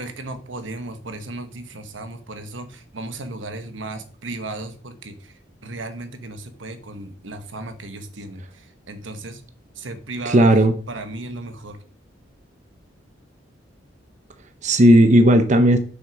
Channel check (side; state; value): both; normal; correlation 0.70